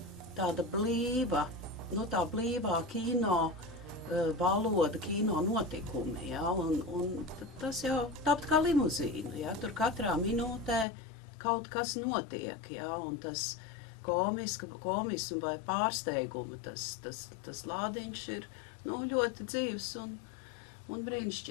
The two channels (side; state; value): right; drops out; at 10.9 s